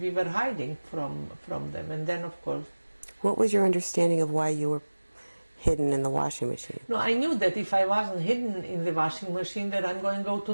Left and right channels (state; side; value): inverted; both; correlation -1.00